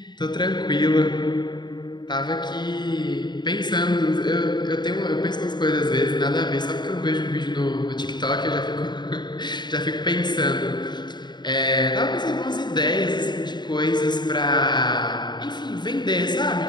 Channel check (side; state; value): right; late; 0.21 ms